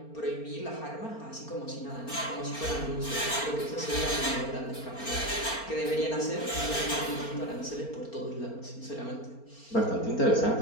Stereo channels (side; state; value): right; late; 4.4 ms